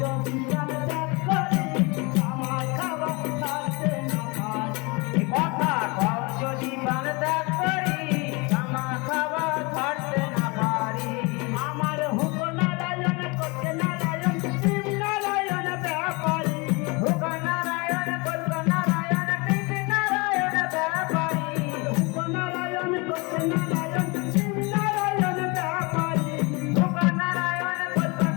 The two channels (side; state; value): right; quieter; 27.7 dB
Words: যদি প্রাণ ত্যাগ করি, তামা খাওয়া ছাড়তে না পারি। কথা কও যদি প্রাণ ত্যাগ করি, তামা খাওয়া ছাড়তে না পারি। আমার হুক নারায়ণ করতে নারায়ণ শিব নারায়ণ ব্যাপারী। হুক নারায়ণ কল্প নারায়ণ কৃষ্ণ নারায়ণ ব্যাপারী। হুক নারায়ণ করতে নারায়ণ শিব নারায়ণ ব্যাপারী। হুক নারায়ণ কল্প